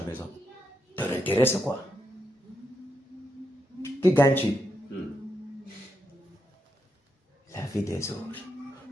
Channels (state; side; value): normal; both; correlation 0.82